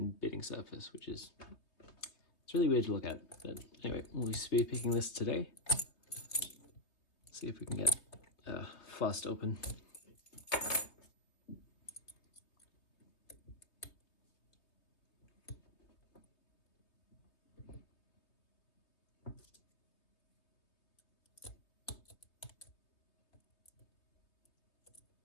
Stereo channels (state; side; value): late; right; 3.2 ms